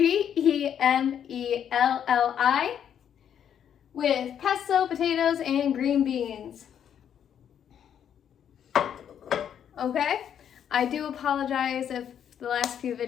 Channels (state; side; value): quieter; right; 9.0 dB